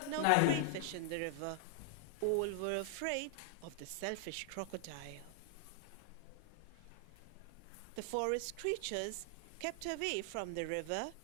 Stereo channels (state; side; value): different; both; correlation 0.00